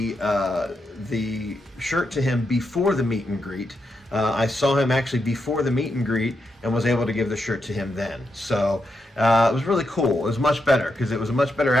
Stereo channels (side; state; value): both; normal; correlation 0.84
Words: shirt to him before the meet and greet. I saw him actually before the meet and greet and was able to give the shirt to him then. So it was really cool. It was much better because it was a much better